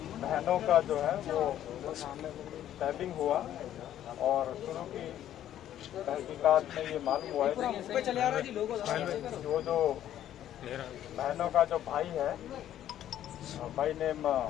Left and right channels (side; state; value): right; quieter; 11.6 dB